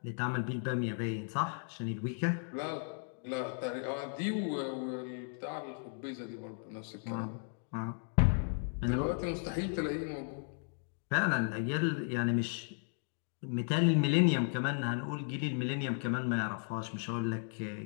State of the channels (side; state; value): right; silent; 54 dB below the other